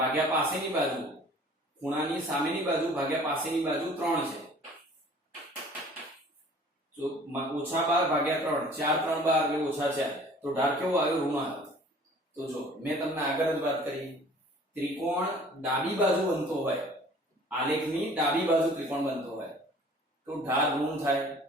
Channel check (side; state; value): both; normal; correlation 0.50